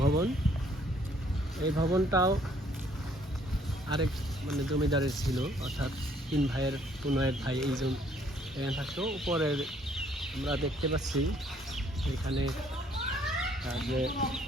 ভবন। এই ভবনটাও আরেক জমিদারের ছিল, অর্থাৎ তিন ভাইয়ের ভাই এইজন এখানে থাকতো। উপরের আমরা দেখতে পাচ্ছি এখানে যে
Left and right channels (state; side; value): normal; both; correlation 0.64